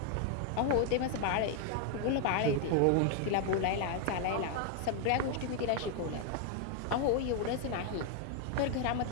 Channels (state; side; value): different; both; correlation 0.00